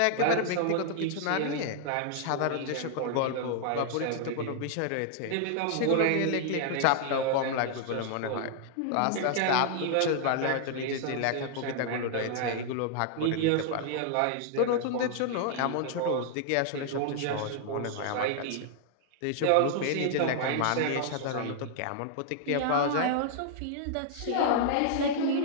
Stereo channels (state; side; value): different; both; correlation 0.00